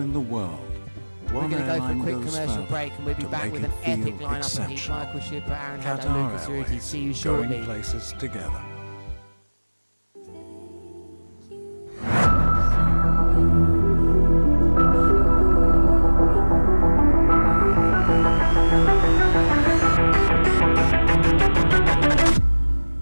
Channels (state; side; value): inverted; both; correlation -1.00